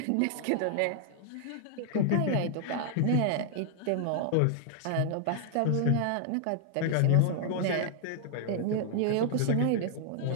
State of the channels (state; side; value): different; both; correlation 0.00